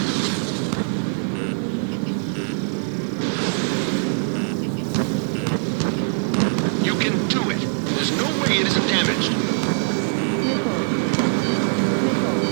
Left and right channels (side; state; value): left; silent; 64 dB below the other